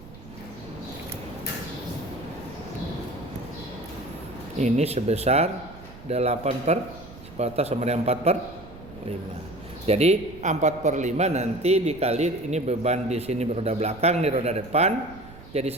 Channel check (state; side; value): noise; right; rumble, 18 dB below the sound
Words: ini sebesar 8/10 sama dengan 4/5. Jadi 4/5 nanti dikali ini beban di sini roda belakang, ini roda depan. Jadi